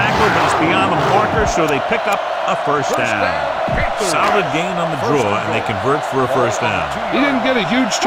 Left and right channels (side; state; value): both; identical; correlation 1.00